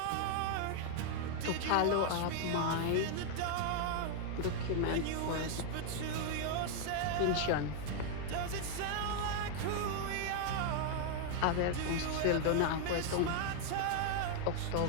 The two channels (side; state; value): both; different; correlation 0.00